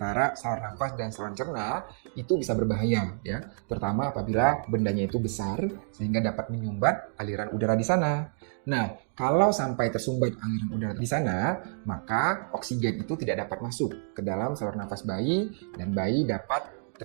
saluran nafas dan saluran cerna, itu bisa berbahaya ya, terutama apabila bendanya itu besar sehingga dapat menyumbat aliran udara di sana. Nah, kalau sampai tersumbat aliran udara di sana, maka oksigen itu tidak dapat masuk ke dalam saluran nafas bayi dan bayi dapat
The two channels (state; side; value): silent; left; digital silence